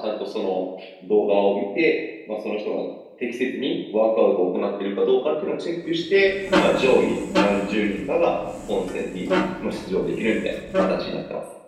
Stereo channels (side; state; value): both; identical; correlation 1.00